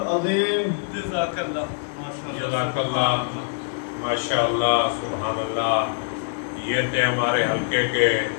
جزاک اللہ جزاک اللہ، ماشاء اللہ، سبحان اللہ۔ یہ تھے ہمارے حلقے کے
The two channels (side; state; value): right; silent; digital silence